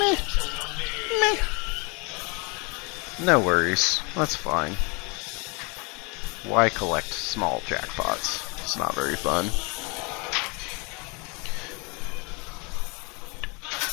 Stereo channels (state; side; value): quieter; right; 30.9 dB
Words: Meh. No worries, that's fine. Why collect small jackpots? It's not very fun.